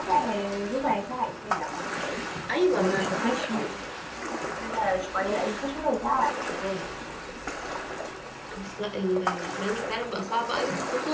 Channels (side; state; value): both; identical; correlation 1.00